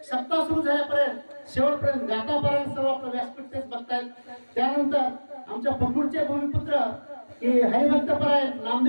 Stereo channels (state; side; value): inverted; both; correlation -1.00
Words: सप्ताह सुरू झाल्यापर्यंत शेवटपर्यंत गातापर्यंत सर्व आपलं व्यासपीठ तेच बघतायत. त्यानंतर आमच्या पखरूडचे भूमिपुत्र की हरिभक्तपरायण